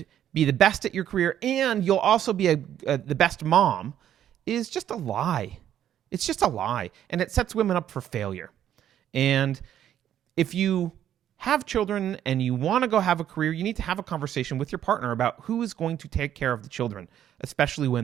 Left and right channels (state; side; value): quieter; left; 10.7 dB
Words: be the best at your career, and you'll also be the best mom, is just a lie. It's just a lie, and it sets women up for failure. And if you have children and you want to go have a career, you need to have a conversation with your partner about who is going to take care of the children, especially